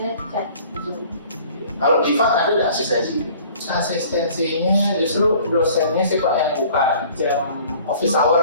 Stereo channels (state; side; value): inverted; both; correlation -0.51